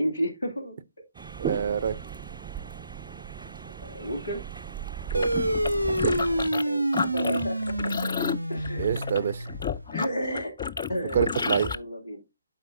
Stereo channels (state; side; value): inverted; both; correlation -0.73